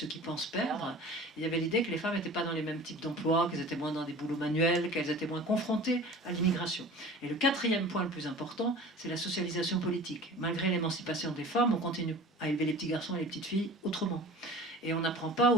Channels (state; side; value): normal; both; correlation 0.40